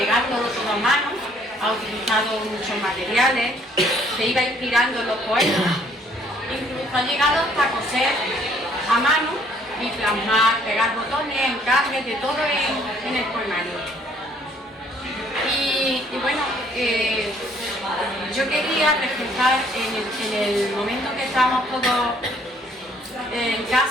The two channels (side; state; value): both; normal; correlation 0.62